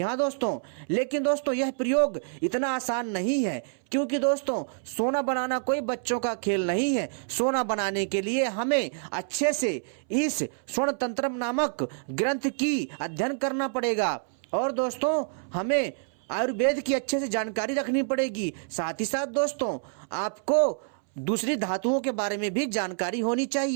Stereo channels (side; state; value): left; silent; 60 dB below the other